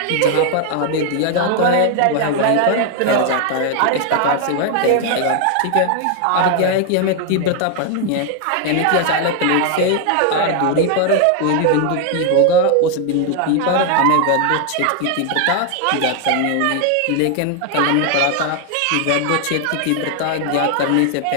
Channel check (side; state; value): both; different; correlation 0.00